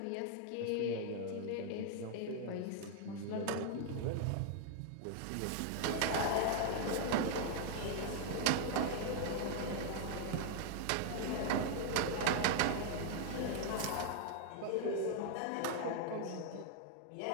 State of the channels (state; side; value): different; both; correlation 0.00